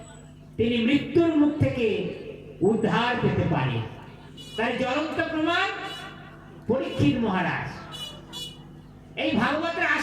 তিনি মৃত্যুর মুখ থেকে উদ্ধার পেতে পারে। তার জ্বলন্ত প্রমাণ পরীক্ষিত মহারাজ। এই ভাগবতের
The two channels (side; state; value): both; identical; correlation 1.00